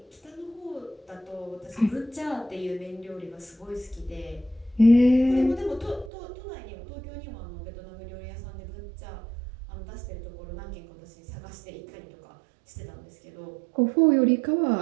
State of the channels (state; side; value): drops out; left; at 6.1 s